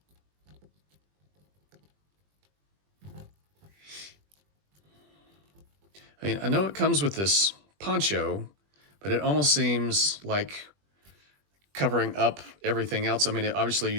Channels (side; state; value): left; late; 20 ms